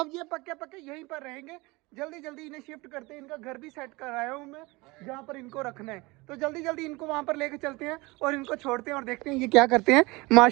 ये पक्के पक्के यहीं पर रहेंगे। जल्दी जल्दी इन्हें शिफ्ट करते हैं, इनका घर भी सेट कराया हूँ मैं जहाँ पर इनको रखना है। तो जल्दी जल्दी इनको वहाँ पर लेके चलते हैं और इनको छोड़ते हैं और देखते हैं ये क्या करते हैं।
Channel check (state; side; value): quieter; left; 23.7 dB